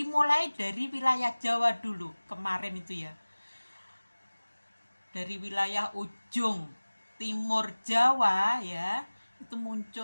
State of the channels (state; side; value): inverted; both; correlation -1.00